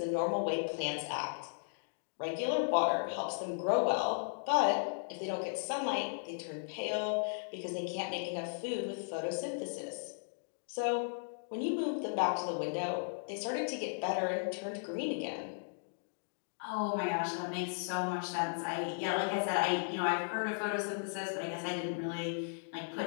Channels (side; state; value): right; silent; digital silence